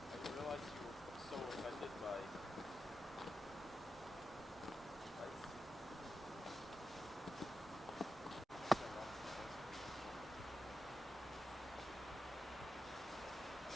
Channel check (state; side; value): normal; both; correlation 0.90